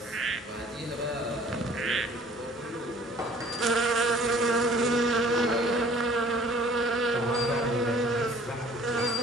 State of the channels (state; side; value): normal; both; correlation 0.53